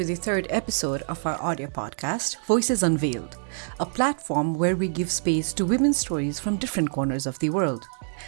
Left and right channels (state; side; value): silent; left; digital silence